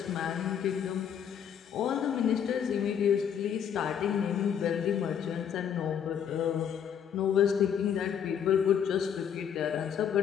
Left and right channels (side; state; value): right; quieter; 8.4 dB